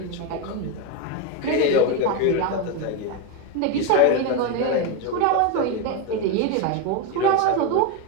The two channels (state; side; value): different; both; correlation 0.03